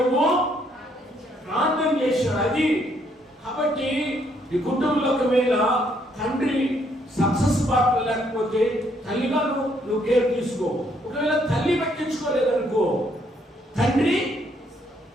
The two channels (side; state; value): both; normal; correlation 0.70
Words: ప్రార్థన చేశాడు. అది కాబట్టి నీ కుటుంబంలో ఒకవేళ తండ్రి సక్సెస్ పార్ట్ లేకపోతే తల్లిగా నువ్వు కేర్ తీసుకో. ఒకవేళ తల్లి పట్టించుకోలేదనుకో తండ్రి